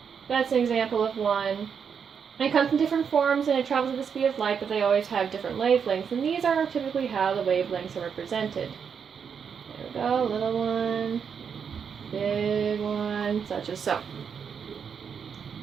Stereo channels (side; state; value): left; quieter; 6.9 dB